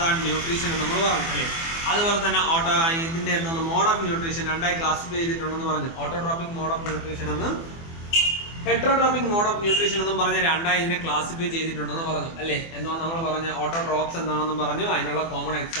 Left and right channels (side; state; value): right; late; 24 ms